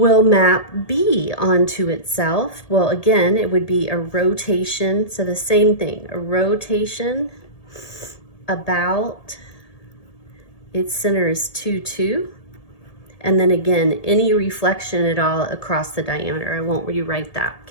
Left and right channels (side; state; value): right; late; 1.8 ms